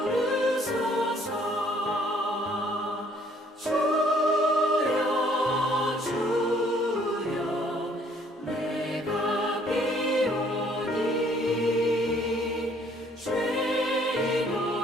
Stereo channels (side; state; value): both; normal; correlation 0.62